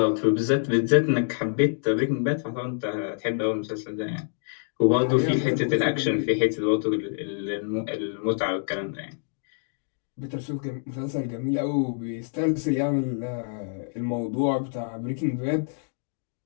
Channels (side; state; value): right; silent; digital silence